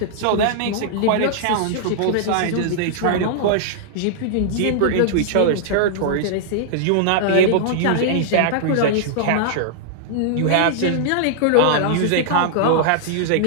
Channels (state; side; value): different; both; correlation -0.01